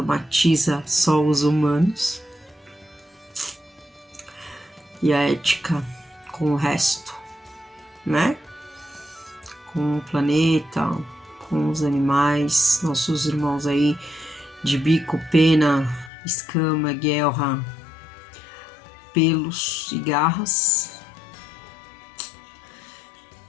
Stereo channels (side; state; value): right; drops out; at 16.1 s